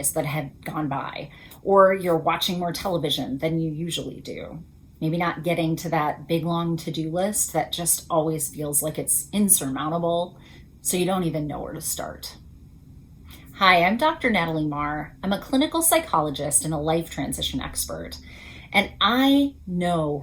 that it had gone by, or you're watching more television than you usually do. Maybe not getting to that big long to do list that just always feels like it's insurmountable, so you don't even know where to start. Hi, I'm Dr. Natalie Marr. I'm a clinical psychologist and a life transition expert, and I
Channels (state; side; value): identical; both; correlation 1.00